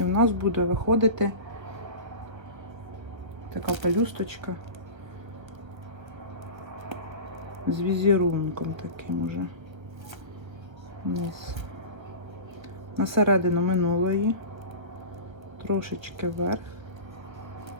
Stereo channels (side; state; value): left; late; 1.5 ms